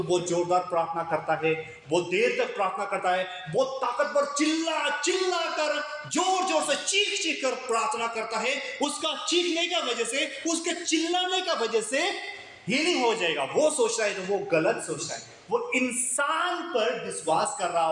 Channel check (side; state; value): both; identical; correlation 1.00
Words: बहुत जोरदार प्रार्थना करता है, बहुत देर तक प्रार्थना करता है, बहुत ताकतवर चिल्ला कर जोर से चीख कर प्रार्थना करता है, उसका चीखने का वजह से, उसके चिल्लाने का वजह से हीलिंग हो जाएगा, वो सोच रहा है तो वो गलत सोच रहा है। वो इंसान पर विश्वास कर रहा